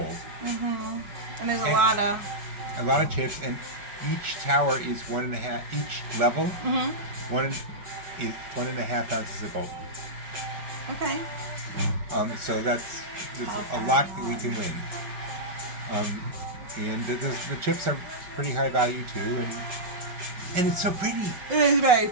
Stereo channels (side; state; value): left; late; 5.1 ms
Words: Mm-hmm. And there's a lot of chips, and each tower is 1.5. Each level, Mm-hmm. 1.5 ounces of gold. Okay. So there's a lot that we can win. And the chips are pretty high value too, and it's so pretty. It is very